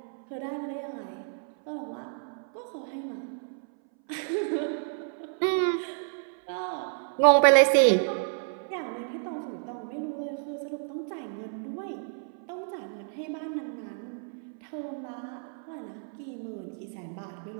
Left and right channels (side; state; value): left; silent; 58 dB below the other